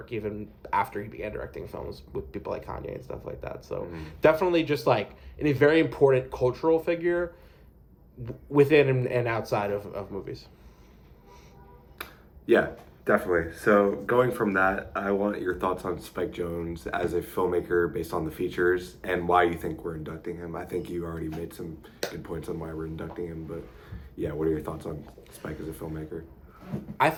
even after he began directing films with people like Kanye and stuff like that. So definitely just in a very important cultural figure within and outside of movies. Yeah, definitely. So going from that, I want your thoughts on Spike Jonze as a filmmaker based on the features and why you think we're inducting him. I think you already made some good points on why we're inducting him, but yeah, what are your thoughts on Spike as a filmmaker? I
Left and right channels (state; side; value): identical; both; correlation 1.00